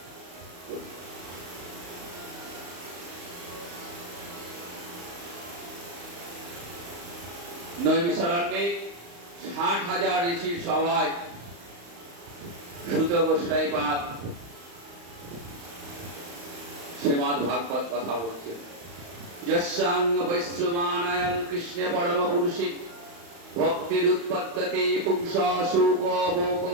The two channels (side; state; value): left; late; 35 ms